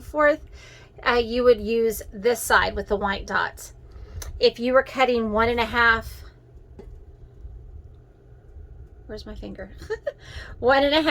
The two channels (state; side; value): identical; both; correlation 1.00